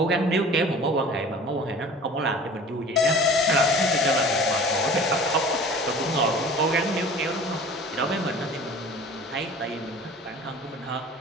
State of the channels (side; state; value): both; normal; correlation 0.43